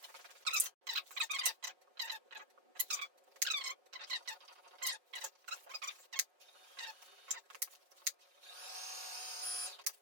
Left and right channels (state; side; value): late; left; 5.5 ms